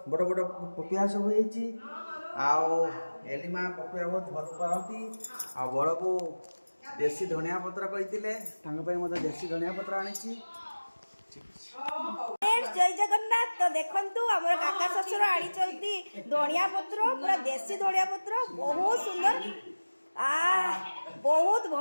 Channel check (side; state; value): both; inverted; correlation -1.00